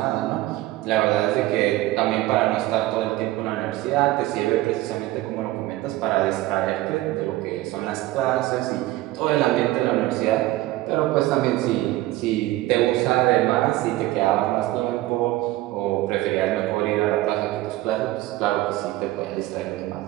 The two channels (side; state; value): left; quieter; 17.0 dB